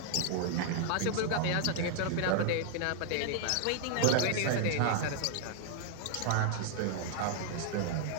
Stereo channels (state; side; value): different; both; correlation 0.00